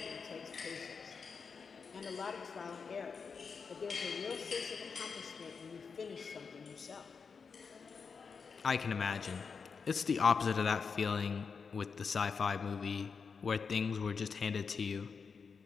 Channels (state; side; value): quieter; right; 5.5 dB